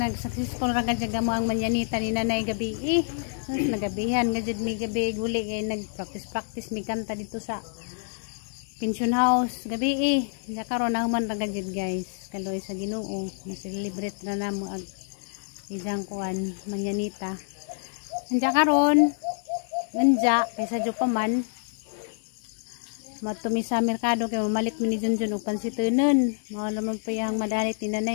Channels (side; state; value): right; silent; 60 dB below the other